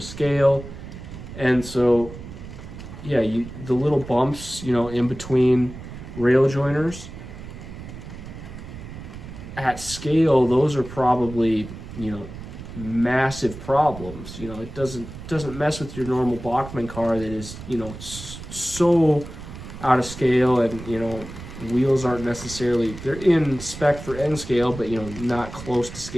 scale, and so yeah, the little bumps, you know, in between rail joiners at scale, those are probably, you know, massive problems. You know, it doesn't mess with your normal Bachmann car that is, you know, so out of scale, and, you know, wheels aren't necessarily, they're in spec for N scale, but, you know, not close to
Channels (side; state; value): right; noise; rumble, 12 dB below the sound